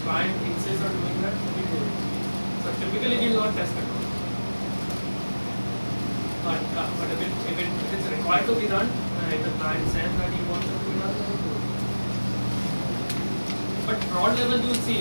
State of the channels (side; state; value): both; inverted; correlation -1.00